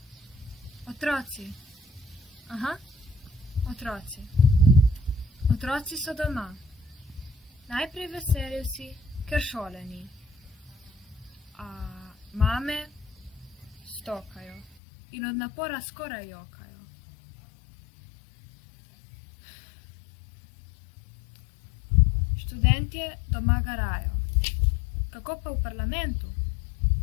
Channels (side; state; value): right; drops out; at 14.8 s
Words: Otroci. Aha, otroci. Otroci so doma. Najprej veseli vsi, ker šole ni. A mame stokajo in od napora skoraj jokajo. Študentje doma garajo. Kako pa v parlamentu?